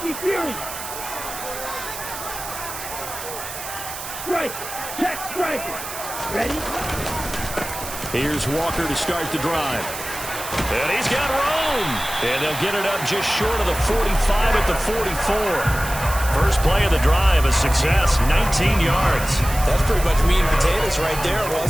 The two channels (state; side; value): noise; right; hiss, 9 dB below the sound